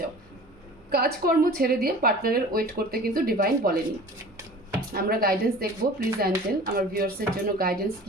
যাও, কাজকর্ম ছেড়ে দিয়ে পার্টনারের ওয়েট করতে কিন্তু ডিভাইন বলেনি। আমরা গাইডেন্স দেখবো, প্লিজ অ্যাঞ্জেল আমার ভিউয়ার্সের জন্য গাইডেন্স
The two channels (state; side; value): normal; both; correlation 0.42